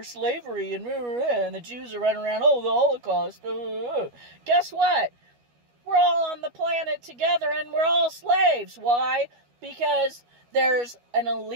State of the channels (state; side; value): late; left; 12 ms